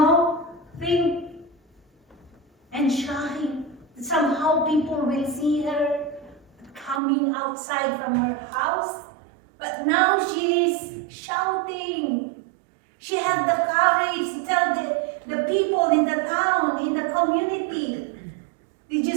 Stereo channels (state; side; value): drops out; left; at 7.0 s